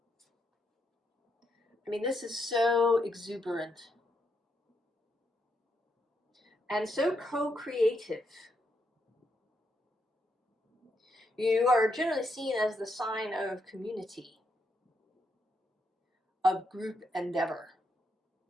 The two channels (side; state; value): both; normal; correlation 0.79